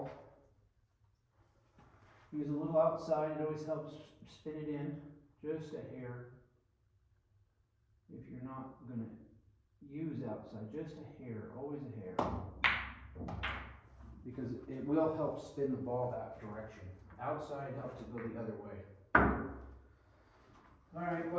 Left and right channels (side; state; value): both; identical; correlation 1.00